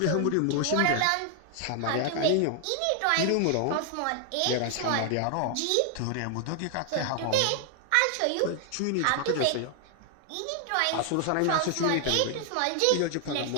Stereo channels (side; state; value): both; different; correlation 0.00